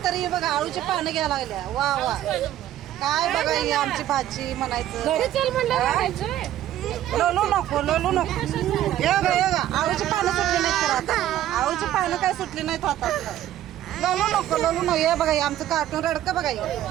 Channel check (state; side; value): quieter; left; 12.6 dB